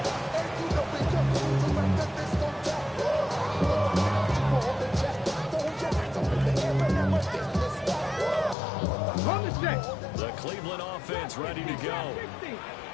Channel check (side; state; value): right; drops out; at 8.6 s